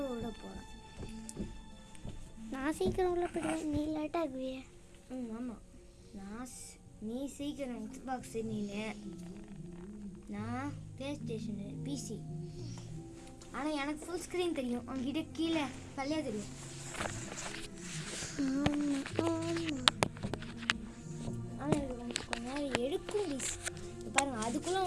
விட போகிறேன். நான் சீக்கிரம் உள்ள போயிடுவேன், நீ லேட்டாக ஆகுவியே. ஆமாம், நீ சீக்கிரம் எக்ஸ்பாக்ஸ், நான் ப்ளே ஸ்டேஷனு பிசி. ஆனால் எனக்கு ஃபுல் ஸ்க்ரீன் தெரியும், அவங்ககிட்ட கீழே கல்லையாக தெரியும். ஆனால் எனக்கு கொஞ்ச நேரம் எடுக்கும் ப்ளீஸ். பாருங்கள், அதுக்குள்ளே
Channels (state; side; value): identical; both; correlation 1.00